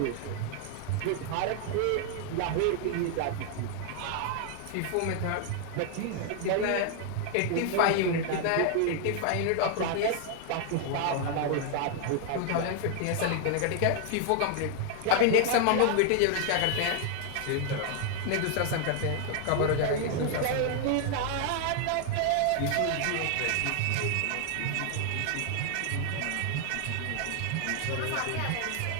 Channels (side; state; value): both; different; correlation 0.00